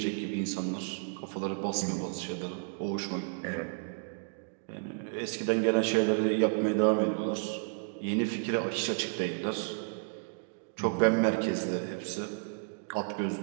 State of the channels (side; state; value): left; silent; digital silence